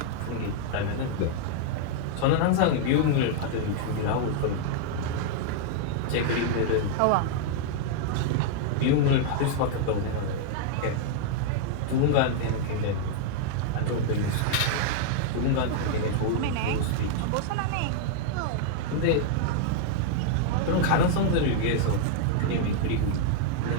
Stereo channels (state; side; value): different; both; correlation -0.01